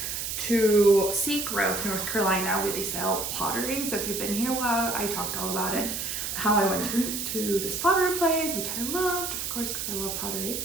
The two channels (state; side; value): noise; right; hiss, 3 dB below the sound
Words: to Seagrove, North Carolina, where they sell pottery. So if you've been here a while, I talked all about it. How I went to this pottery place, which I loved, of course, because I love pottery.